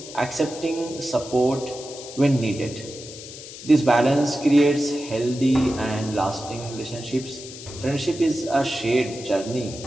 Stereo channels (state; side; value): noise; left; hiss, 14 dB below the sound